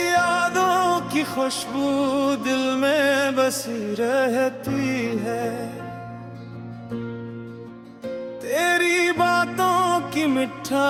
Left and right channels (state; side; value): identical; both; correlation 1.00